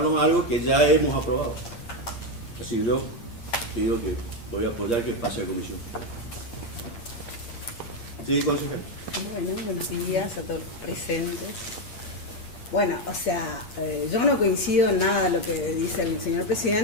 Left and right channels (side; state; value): right; late; 8.6 ms